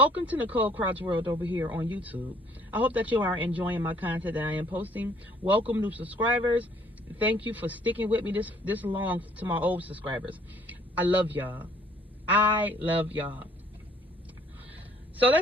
to Nicole Crouch World over here on YouTube. I hope that you are enjoying my content that I am posting. Welcome new subscribers. Thank you for sticking with me this long to my old subscribers. I love y'all. I love y'all. So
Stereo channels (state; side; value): normal; both; correlation 0.60